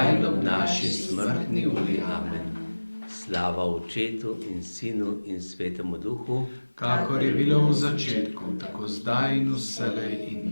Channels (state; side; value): inverted; both; correlation -1.00